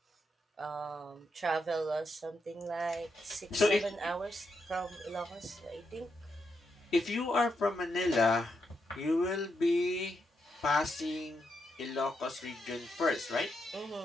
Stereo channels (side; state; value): both; normal; correlation 0.82